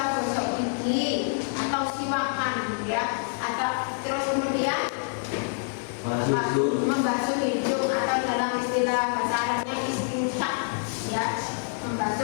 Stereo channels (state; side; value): silent; right; digital silence